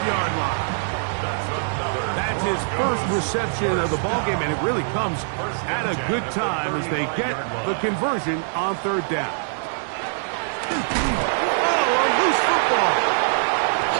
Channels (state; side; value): silent; left; digital silence